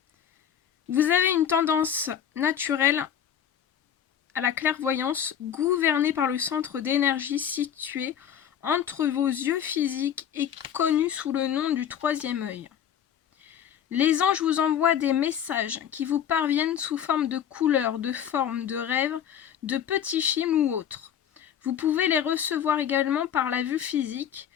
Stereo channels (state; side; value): quieter; right; 9.1 dB